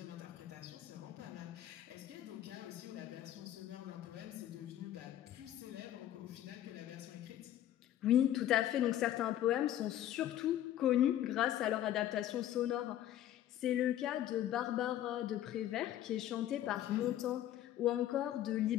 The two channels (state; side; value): quieter; right; 12.2 dB